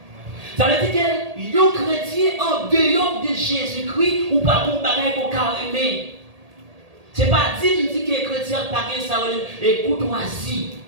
Ça veut dire que les chrétiens en dehors de Jésus-Christ ou pas pour bagay pour carrément. C'est pas dit que les chrétiens pas ça et courtoisie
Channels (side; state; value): left; late; 1.8 ms